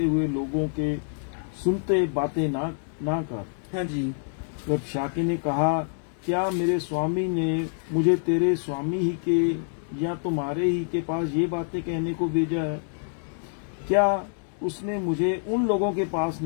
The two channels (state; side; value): silent; right; digital silence